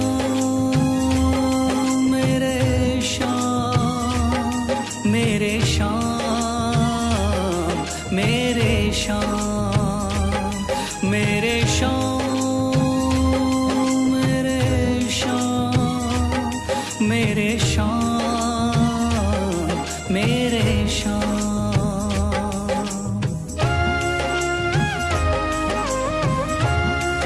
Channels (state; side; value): identical; both; correlation 1.00